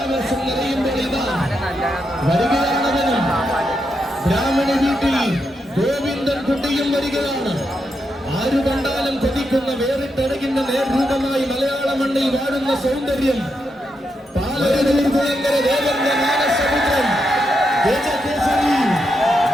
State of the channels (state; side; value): normal; both; correlation 0.83